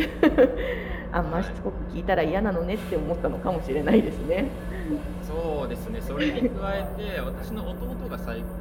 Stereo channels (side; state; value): both; identical; correlation 1.00